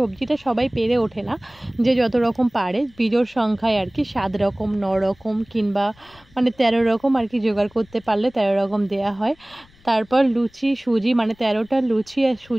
সবাই পেরে ওঠে না, যে যত রকম পারে বিজোড় সংখ্যায় আর কি 7 রকম 9 রকম কিংবা মানে 13 রকম আর কি জোগাড় করতে পারলে 13 রকম দেয়া হয়। তারপর লুচি সুজি, মানে 13টা লুচি আর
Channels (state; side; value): noise; left; rumble, 29 dB below the sound